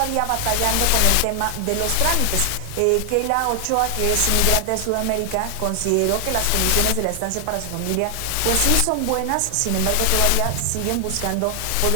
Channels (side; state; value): both; different; correlation 0.00